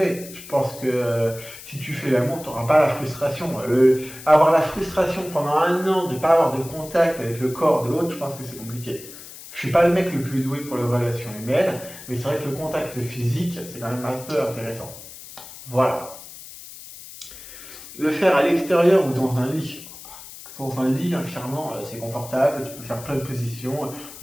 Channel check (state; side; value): noise; left; hiss, 15 dB below the sound